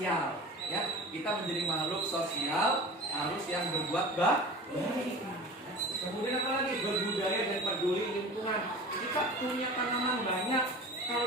Ya, kita menjadi makhluk sosial harus yang berbuat baik. Kemudian apa lagi? Berbudaya dan peduli lingkungan. Kita punya tanaman banyak,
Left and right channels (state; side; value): normal; both; correlation 0.37